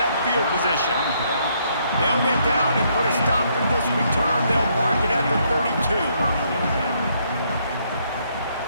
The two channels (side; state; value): both; inverted; correlation -0.71